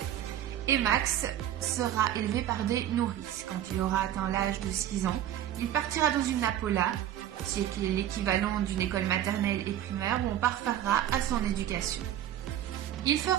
Et Max sera élevé par des nourrices. Quand il aura atteint l'âge de 6 ans, il partira dans une Napola, qui est l'équivalent d'une école maternelle et primaire, où on parfera à son éducation. Il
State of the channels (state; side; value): quieter; left; 11.6 dB